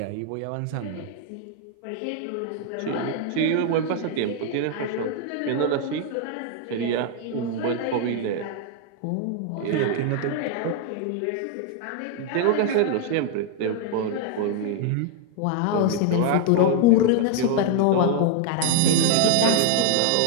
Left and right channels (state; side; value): different; both; correlation 0.00